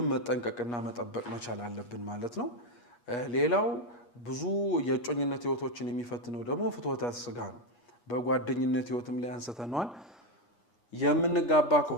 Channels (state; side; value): late; right; 8.4 ms